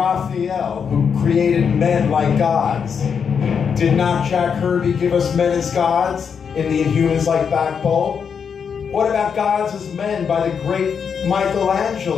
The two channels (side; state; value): right; quieter; 6.7 dB